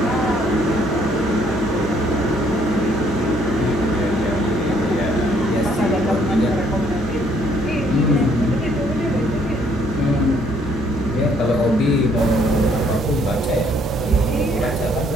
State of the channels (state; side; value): normal; both; correlation 0.65